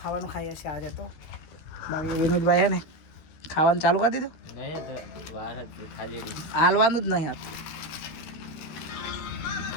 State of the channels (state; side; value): late; right; 13 ms